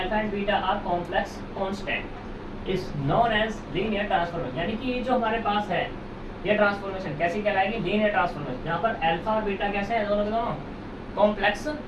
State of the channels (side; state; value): both; identical; correlation 1.00